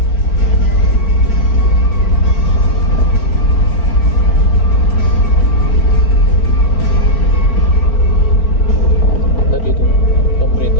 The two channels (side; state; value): right; late; 4.4 ms